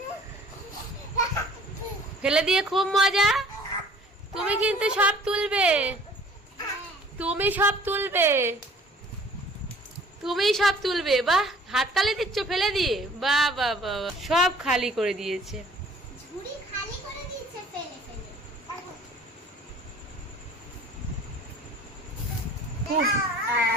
ফেলে দিয়ে খুব মজা। তুমি কিন্তু সব তুলবে, তুমি সব তুলবে, তুমি সব তুলবে। বাহ, হাততালি দিচ্ছ ফেলে দিয়ে। বাহ বাহ বাহ, সব খালি করে দিয়েছে, ঝুড়ি খালি করে দিয়েছে ফেলে ফেলে।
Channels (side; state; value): both; normal; correlation 0.51